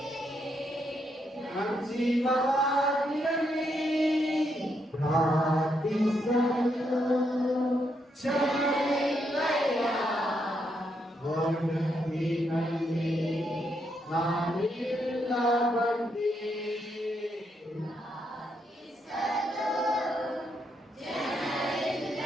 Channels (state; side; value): normal; both; correlation 0.78